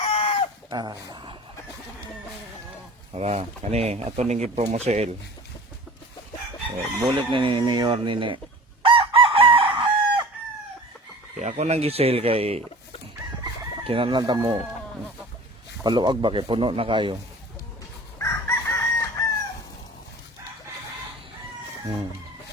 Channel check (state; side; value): normal; both; correlation 0.41